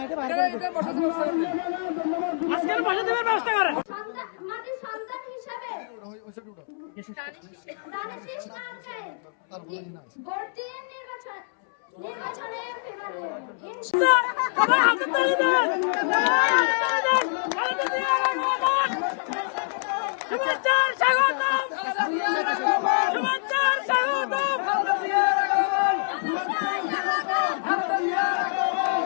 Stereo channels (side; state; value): right; silent; 61 dB below the other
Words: বাইরে করে দেন। আজকের বসে দেওয়ার ব্যবস্থা করে মাটির সন্তান হিসাবে দানিশ নামকে ভর্তি নির্বাচনে